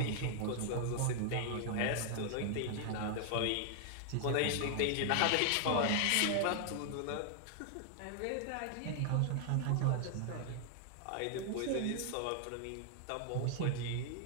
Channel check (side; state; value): both; different; correlation 0.00